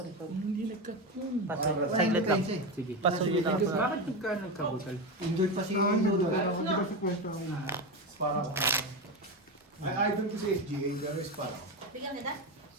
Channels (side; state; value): both; normal; correlation 0.16